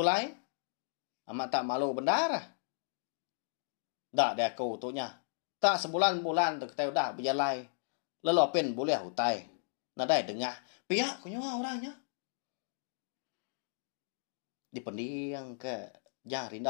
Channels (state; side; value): silent; right; digital silence